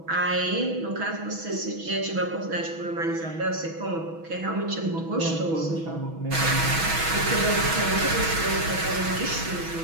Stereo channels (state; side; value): late; left; 6.1 ms